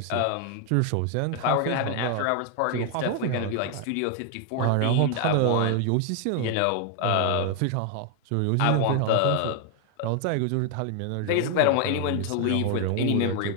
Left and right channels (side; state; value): both; different; correlation 0.00